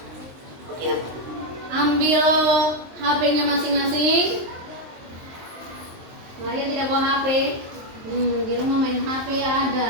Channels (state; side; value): late; left; 23 ms